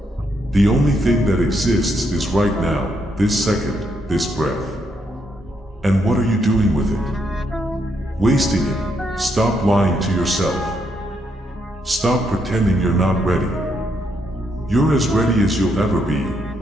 The only thing that exists is right now, this second, this breath. And what are you doing with it? Wasting it. Stop lying to yourself. Stop pretending you're not ready. You're as ready as you'll ever be,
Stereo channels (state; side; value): normal; both; correlation 0.77